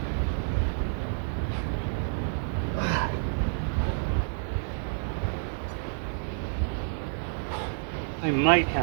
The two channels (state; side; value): silent; left; digital silence